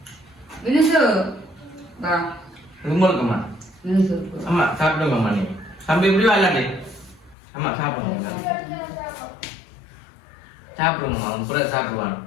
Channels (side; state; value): right; drops out; at 7.4 s